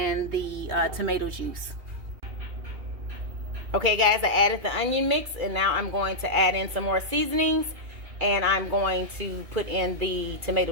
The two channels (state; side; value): late; left; 2.3 ms